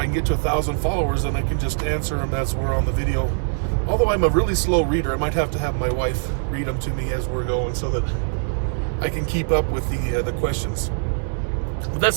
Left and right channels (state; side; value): silent; left; digital silence